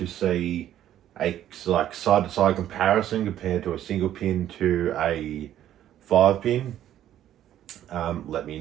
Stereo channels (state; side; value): quieter; left; 11.7 dB